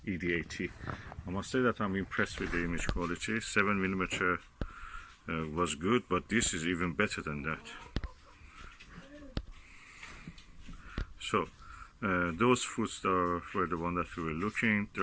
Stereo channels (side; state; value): both; identical; correlation 1.00